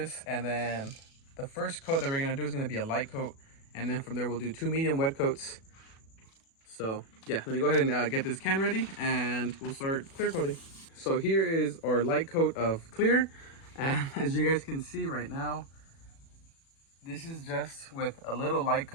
and then the first coat that we're gonna do is gonna be a light coat, and then from there we'll do 2 medium wet coats. So yeah, let me go ahead and get this can ready, and we'll start clear coating. So here is our light coat of clear, and as you guys can see right now, this is just with a little light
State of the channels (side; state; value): right; late; 36 ms